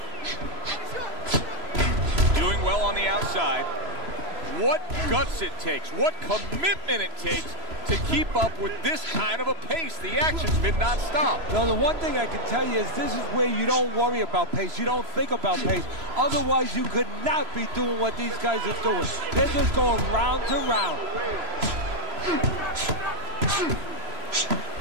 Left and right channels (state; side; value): late; left; 3.0 ms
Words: Doing well on the outside. What guts it takes, what commitment it takes to keep up with this kind of a pace. The action's been nonstop. No, the one thing I can tell you is this is where you don't worry about pace. You don't think about pace. Otherwise, you could not be doing what these guys are doing. They're just going round to round.